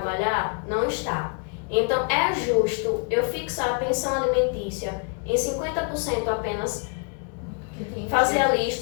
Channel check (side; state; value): right; quieter; 39.1 dB